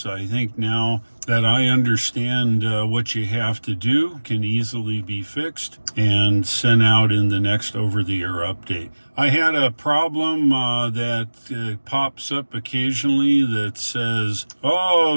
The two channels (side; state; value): both; inverted; correlation -1.00